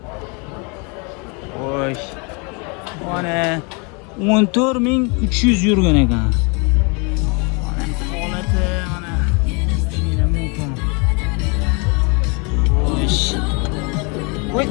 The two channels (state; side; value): quieter; right; 32.2 dB